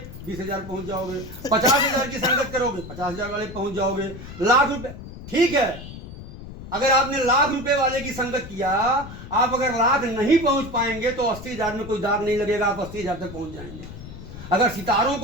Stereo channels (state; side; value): noise; left; rumble, 13 dB below the sound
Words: 20,000 पहुंच जाओगे। 50,000 की संगत करोगे 50,000 वाले पहुंच जाओगे। लाख रुपए ठीक है, अगर आपने लाख रुपए वाले की संगत किया, आप अगर लाख नहीं पहुंच पाएंगे तो 80,000 में कोई दाग नहीं लगेगा, आप 80,000 तक पहुंच जाएंगे। अगर सितारों